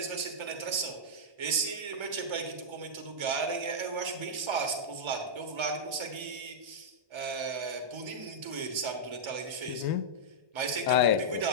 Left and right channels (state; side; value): late; left; 1.3 ms